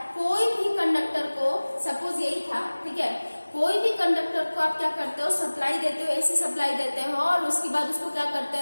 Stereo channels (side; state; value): both; inverted; correlation -1.00